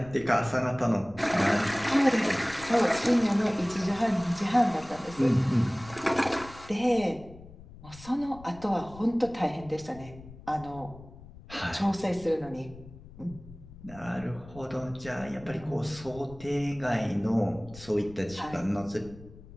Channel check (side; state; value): left; noise; rumble, 18 dB below the sound